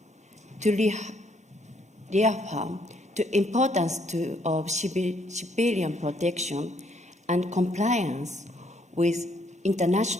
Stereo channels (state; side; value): normal; both; correlation 0.69